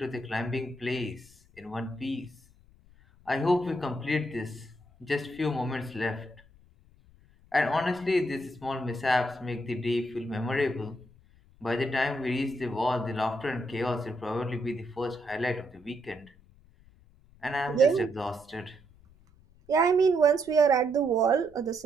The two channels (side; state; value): left; noise; rumble, 27 dB below the sound